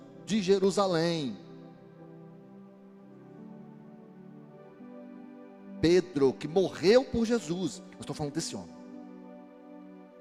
de Jerusalém. Pedro, que morreu por Jesus. Eu estou falando desse homem.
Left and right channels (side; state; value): both; identical; correlation 1.00